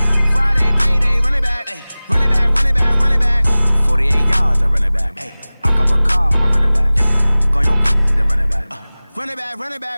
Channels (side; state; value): both; inverted; correlation -0.98